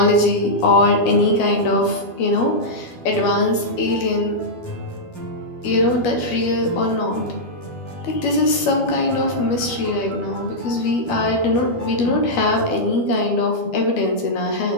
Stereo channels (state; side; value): late; right; 12 ms